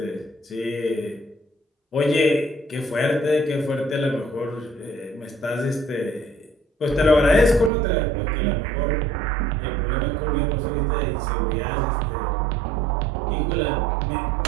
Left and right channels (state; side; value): drops out; left; at 7.7 s